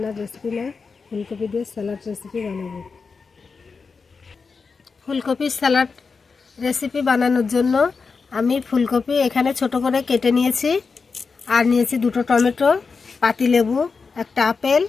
রেসিপি না, ফুলকপি দিয়ে স্যালাড রেসিপি বানাবো। ফুলকপির স্যালাড রেসিপি বানানোর জন্য আমি ফুলকপি এখানে ছোট করে কেটে নিয়েছি, আর নিয়েছি 2টো টমেটো, পাতিলেবু, একটা আপেল,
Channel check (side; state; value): right; quieter; 4.9 dB